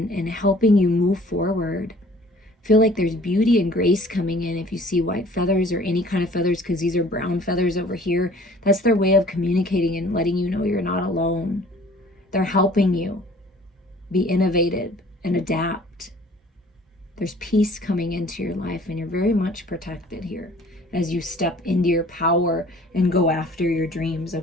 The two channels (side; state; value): both; normal; correlation 0.52